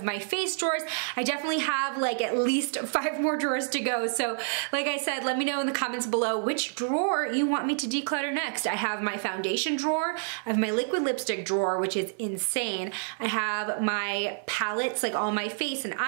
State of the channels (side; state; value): left; silent; 59 dB below the other